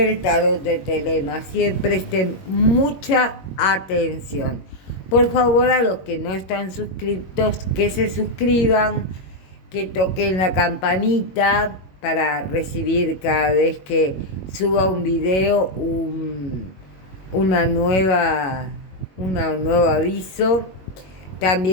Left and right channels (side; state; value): right; late; 21 ms